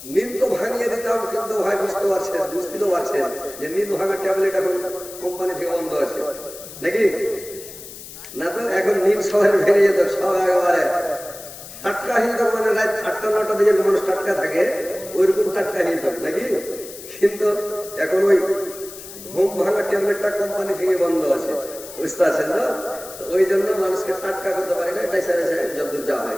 নিদ তো ভাঙিয়ে দিতাম, কিন্তু ভাই বুঝতে পারছেন, বুঝতে তো পারছেন যে নিদ ভাঙার ট্যাবলেট এখন কোম্পানি থেকে বন্ধ আছে নাকি না? তো এখন নিদ সবাই ভেঙে যেত, সব একেবারে টাটকা হয়ে যেত, মানে রাত 8টা-9টা দিকে মানুষ টাটকা থাকে ওইরকম টাটকা হয়ে যেত নাকি। কিন্তু এখন ওই ঘুম ভাঙার ট্যাবলেটটা কোম্পানি থেকে বন্ধ আছে, বুঝতে পারছেন তো? ওই জন্য মানুষকে টাটকা করতে পারে না, বেসা বেসা যতদূর যা হয়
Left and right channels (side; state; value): left; noise; hiss, 14 dB below the sound